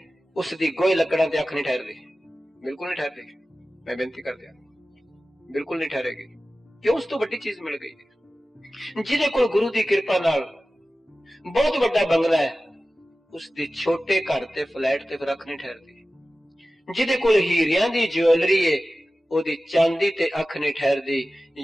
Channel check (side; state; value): both; normal; correlation 0.95